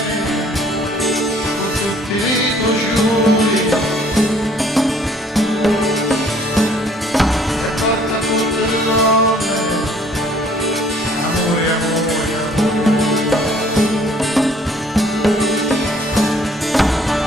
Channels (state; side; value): normal; both; correlation 0.58